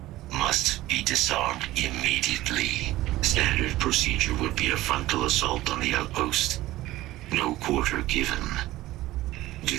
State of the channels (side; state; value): left; quieter; 16.7 dB